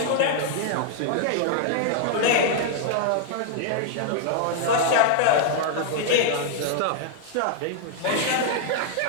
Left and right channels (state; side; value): different; both; correlation -0.01